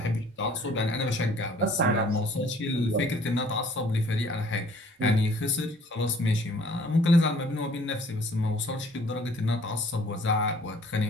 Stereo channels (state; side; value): normal; both; correlation 0.56